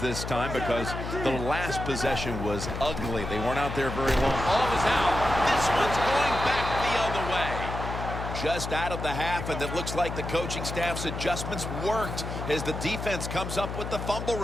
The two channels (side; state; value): left; noise; hum, 6 dB below the sound